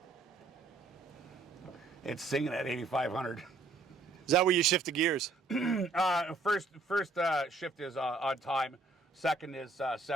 It's singing at 8,500. Is that where you shift the gears? First shift is on time. Second is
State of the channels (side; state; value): left; quieter; 3.4 dB